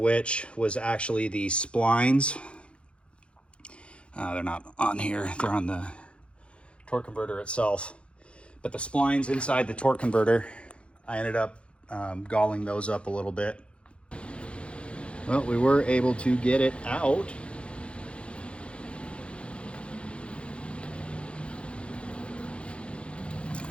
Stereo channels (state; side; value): late; right; 0.059 ms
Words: was actually the splines. They're not on here, they're on the torque converter itself. But the splines inside the torque converter, I ended up galling those up a little bit. Well, we were able to get it out.